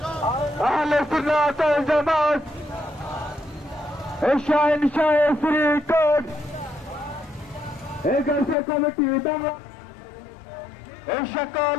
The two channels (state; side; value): drops out; right; at 8.6 s